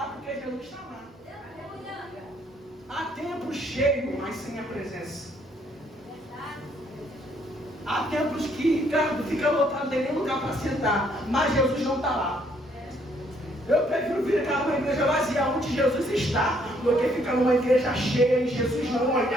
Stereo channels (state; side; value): normal; both; correlation 0.67